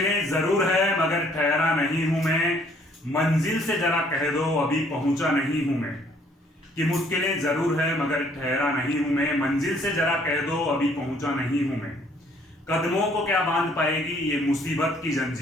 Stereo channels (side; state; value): both; normal; correlation 0.62